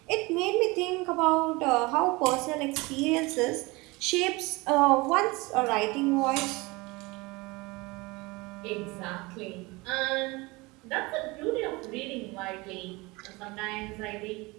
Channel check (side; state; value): left; quieter; 23.9 dB